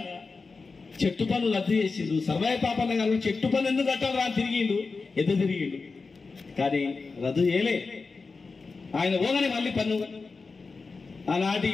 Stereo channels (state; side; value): quieter; right; 4.3 dB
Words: చెట్టు పన్ను రద్దు చేసిండు. సర్వాయి పాపన్న గారు చెట్టు పన్ను ఎందుకు కట్టాలి అని తిరిగిండు, ఎదురు తిరిగిండు, కానీ రద్దు చేయలే. ఆయన పోగానే మళ్ళీ పన్ను, ఆనాటి